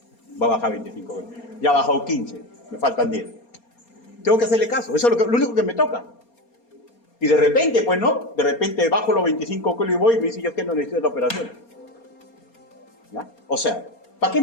va a bajar 25 kilos. Ya ha bajado 15, me faltan 10. Tengo que hacerle caso, eso es lo único que me toca. Y de repente, pues no, de repente bajo los 25 kilos y voy y me dice, yo es que no necesito la operación. ¿Ya? O sea, ¿para qué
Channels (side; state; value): right; late; 4.3 ms